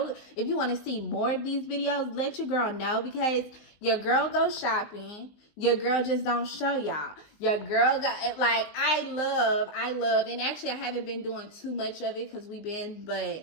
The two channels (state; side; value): late; right; 19 ms